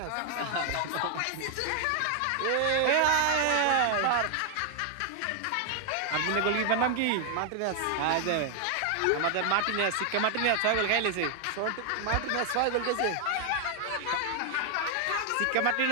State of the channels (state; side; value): different; both; correlation 0.00